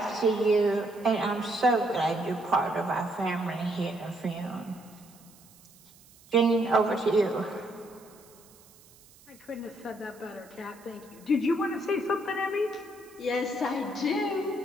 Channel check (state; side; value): noise; right; hiss, 25 dB below the sound